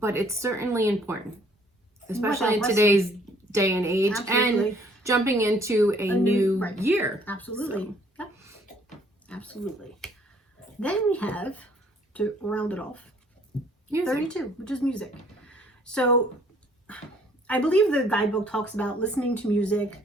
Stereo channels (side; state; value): both; normal; correlation 0.61